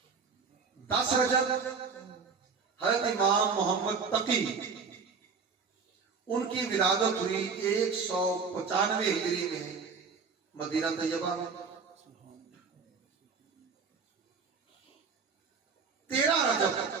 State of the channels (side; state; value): left; quieter; 5.3 dB